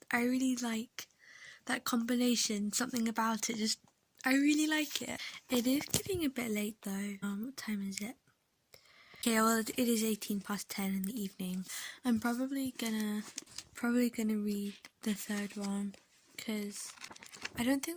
really like that combination. Something about it, I really like it. It is getting a bit late though. What time is it? Okay, well it is 10:18 in the evening. I'm probably gonna read the third one, because I don't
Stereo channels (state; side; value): identical; both; correlation 1.00